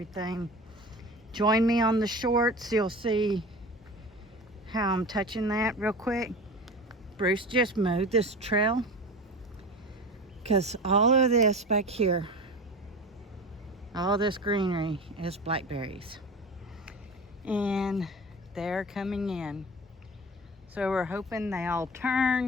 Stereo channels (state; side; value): normal; both; correlation 0.33